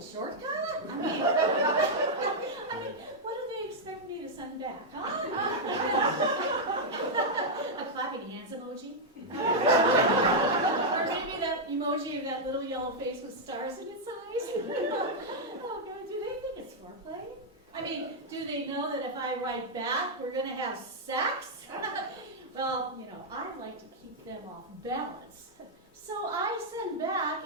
shortcut? I mean, what do they expect me to send back, huh? A clapping hands emoji? Or maybe that emoji of that little yellow face with stars in its eyes? Oh God, do they think it's foreplay? I mean, do they know that if I write back, we're going to have sex? Well, you know, I like to keep them off balance. So I send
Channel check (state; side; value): normal; both; correlation -0.03